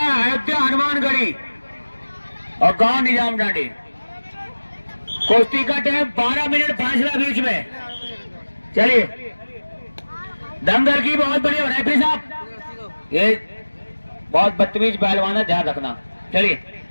अयोध्या हनुमानगढ़ी और गांव निजाम डांडी। कुश्ती का टाइम 12 मिनट फासला बीच में। चलिए दंगल की बहुत बढ़िया रेफरी साहब, ये बहुत बदतमीज पहलवान है, ध्यान रखना। चलिए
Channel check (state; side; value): inverted; both; correlation -1.00